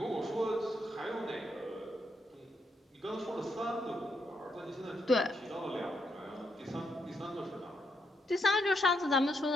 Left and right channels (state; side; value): normal; both; correlation 0.79